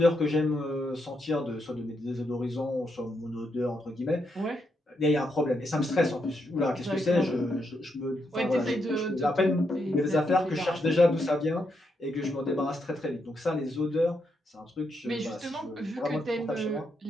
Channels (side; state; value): both; normal; correlation 0.80